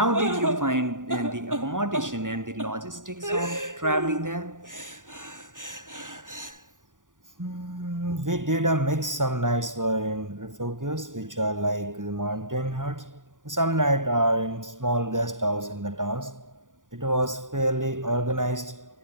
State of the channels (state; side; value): late; left; 0.88 ms